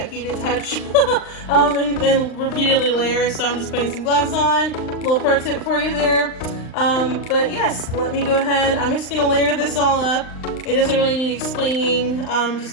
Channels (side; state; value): right; late; 39 ms